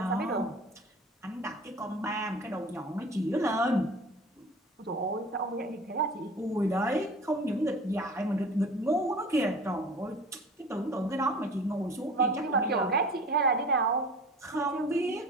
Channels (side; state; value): both; normal; correlation 0.41